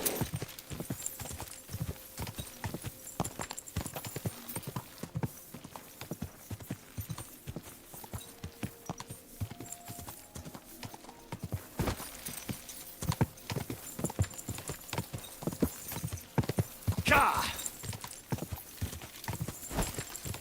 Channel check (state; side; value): identical; both; correlation 1.00